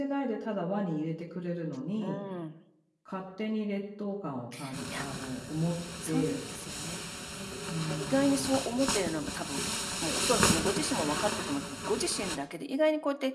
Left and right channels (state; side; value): identical; both; correlation 1.00